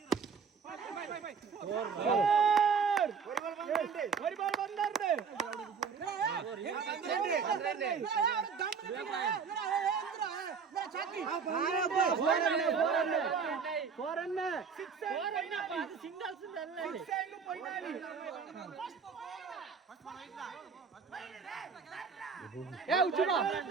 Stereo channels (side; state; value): left; quieter; 6.0 dB